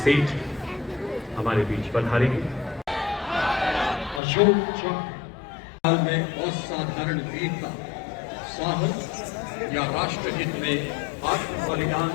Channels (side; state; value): right; drops out; at 4.2 s